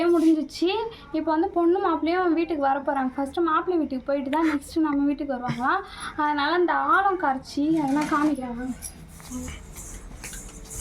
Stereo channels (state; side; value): identical; both; correlation 1.00